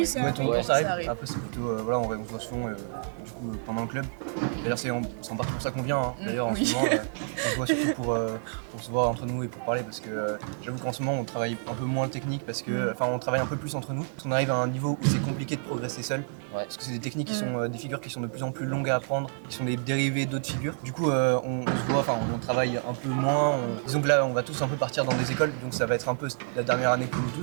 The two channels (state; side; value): silent; left; digital silence